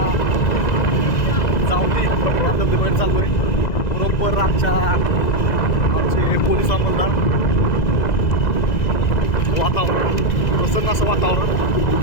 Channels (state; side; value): late; right; 2.0 ms